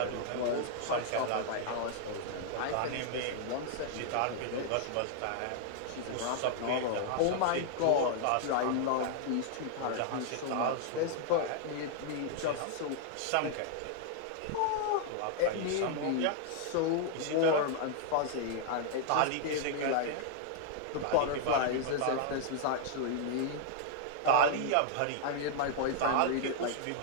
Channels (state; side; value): different; both; correlation 0.00